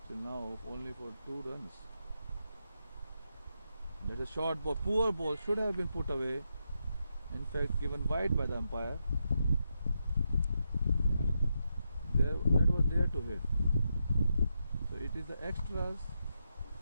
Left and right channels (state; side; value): inverted; both; correlation -0.84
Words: till now, only for 2 runs. That's a short ball, poor ball, should have been put away. In fact, given wide by the umpire. That was there to hit. So it is the extras